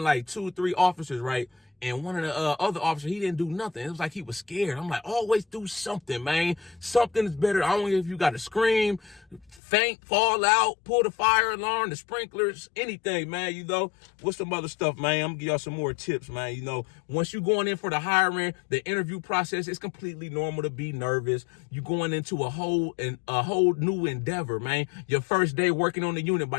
like 2 or 3 officers, right? And one of the other officers, he didn't do nothing. It was like he was scared. I'm like, always do something, man. Something is better. I don't know if you got to scream, faint, fall out, pull the fire alarm, the sprinklers, anything, man. You know, what's some other stuff, man? I'm gonna give y'all some more tips, man. You know, once you going in for the hiring, the interview process, it's completely normal to be nervous. You going into a whole new endeavor, man. Your first day working on the unit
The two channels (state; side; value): drops out; right; at 9.6 s